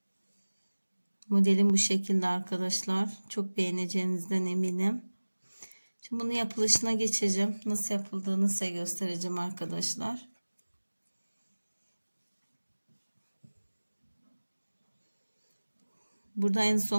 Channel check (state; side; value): inverted; both; correlation -1.00